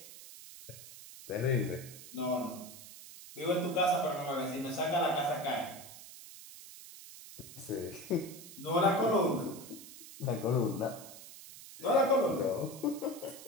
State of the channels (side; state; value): right; noise; hiss, 15 dB below the sound